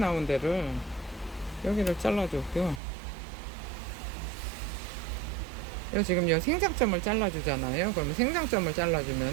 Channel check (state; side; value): drops out; left; at 2.8 s